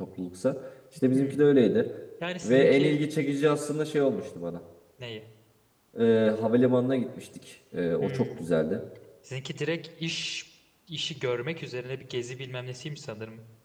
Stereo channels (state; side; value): identical; both; correlation 1.00